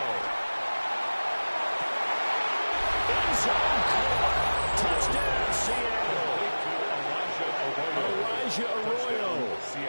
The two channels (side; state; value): both; inverted; correlation -1.00